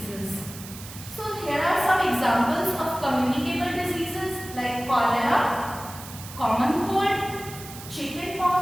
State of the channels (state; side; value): noise; right; hiss, 14 dB below the sound